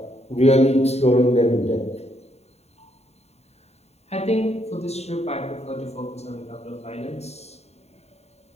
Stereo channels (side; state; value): right; late; 0.31 ms